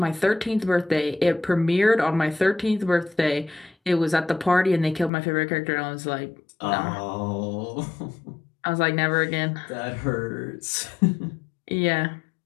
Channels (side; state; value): right; drops out; at 5.1 s